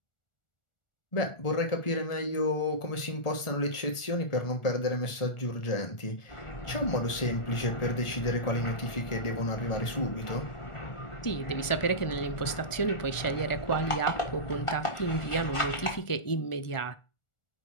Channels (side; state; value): right; late; 1.4 ms